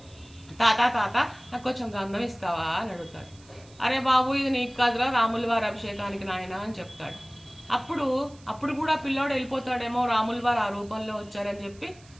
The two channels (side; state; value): right; noise; hiss, 26 dB below the sound